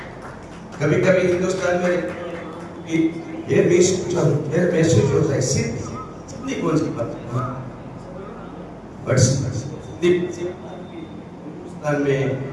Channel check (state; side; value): identical; both; correlation 1.00